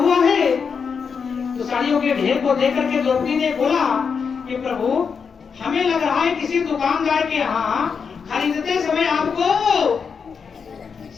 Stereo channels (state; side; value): quieter; right; 6.0 dB